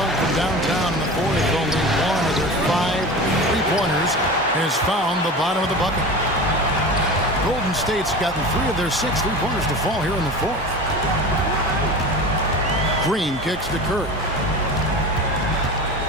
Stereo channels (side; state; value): both; normal; correlation 0.32